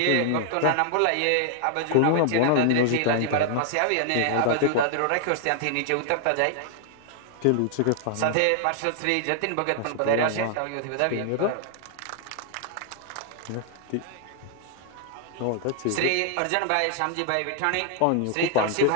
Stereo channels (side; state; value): both; different; correlation 0.00